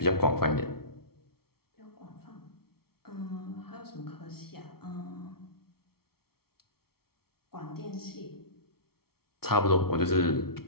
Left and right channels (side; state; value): right; late; 0.94 ms